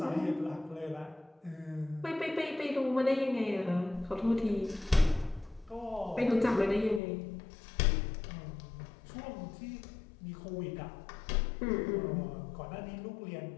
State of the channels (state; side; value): drops out; right; at 7.0 s